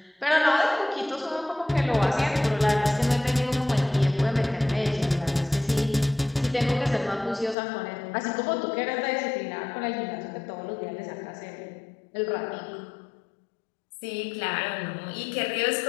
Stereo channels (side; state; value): right; drops out; at 7.6 s